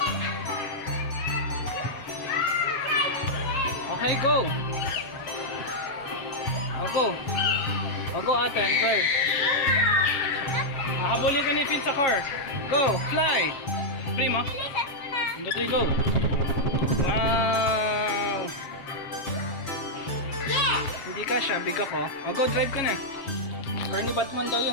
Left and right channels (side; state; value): right; late; 7.5 ms